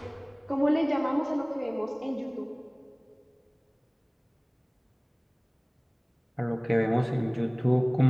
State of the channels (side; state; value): both; identical; correlation 1.00